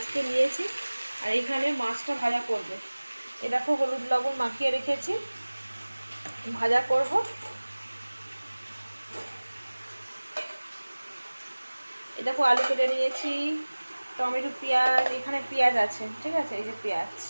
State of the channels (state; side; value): inverted; both; correlation -1.00